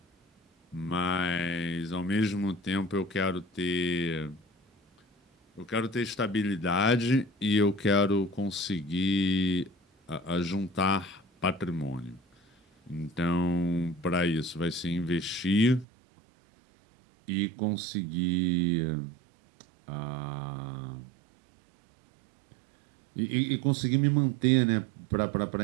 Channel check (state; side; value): drops out; left; at 15.9 s